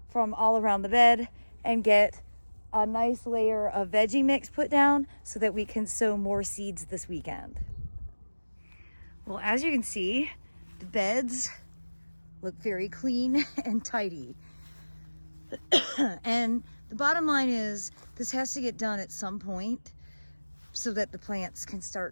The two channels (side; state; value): both; inverted; correlation -1.00